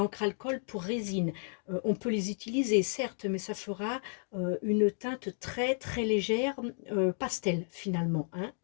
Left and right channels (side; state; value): right; silent; digital silence